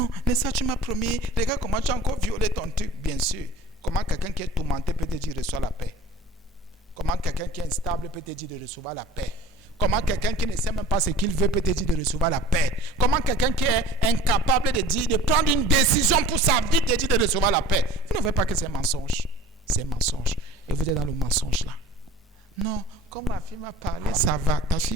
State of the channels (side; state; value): both; normal; correlation 0.44